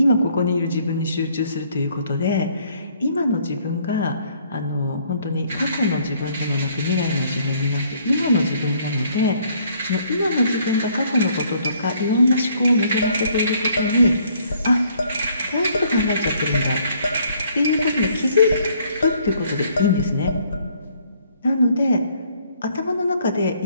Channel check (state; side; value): inverted; both; correlation -0.64